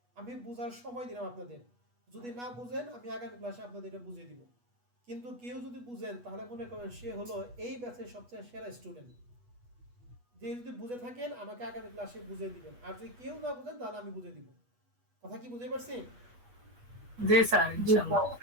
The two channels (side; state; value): left; late; 8.2 ms